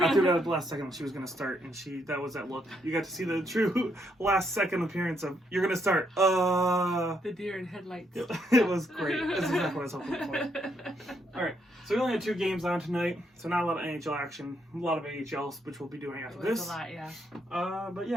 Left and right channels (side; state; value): both; normal; correlation 0.75